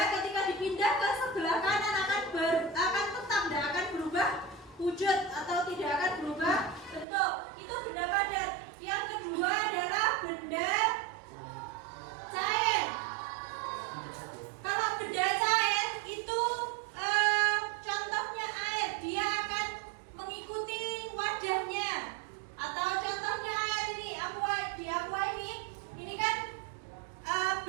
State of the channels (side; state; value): left; drops out; at 7.1 s